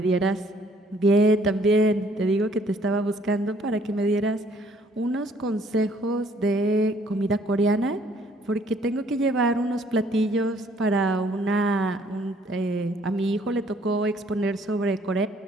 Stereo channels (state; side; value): normal; both; correlation 0.62